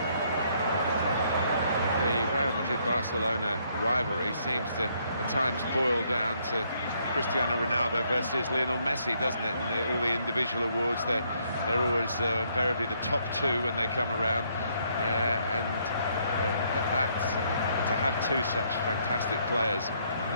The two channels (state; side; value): inverted; both; correlation -0.70